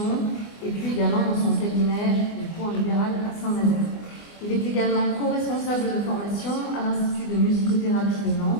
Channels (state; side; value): late; right; 24 ms